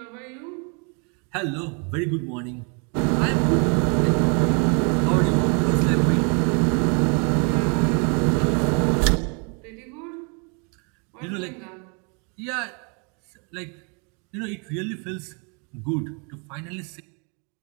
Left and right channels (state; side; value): quieter; left; 36.1 dB